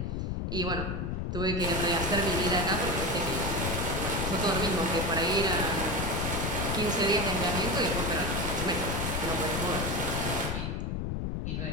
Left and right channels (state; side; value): noise; left; rumble, 1 dB below the sound